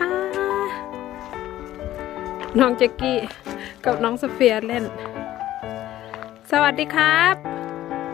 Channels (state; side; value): quieter; right; 13.7 dB